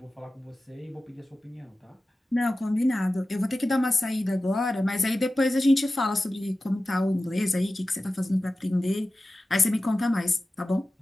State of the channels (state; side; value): normal; both; correlation 0.95